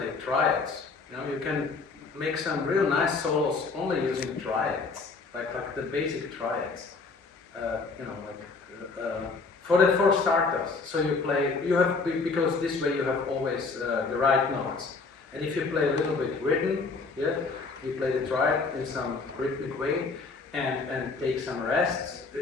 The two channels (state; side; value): quieter; right; 4.3 dB